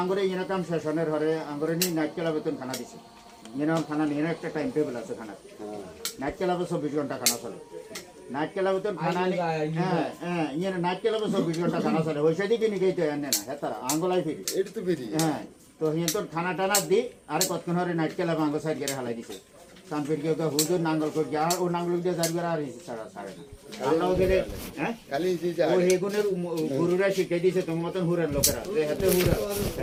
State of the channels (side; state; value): both; identical; correlation 1.00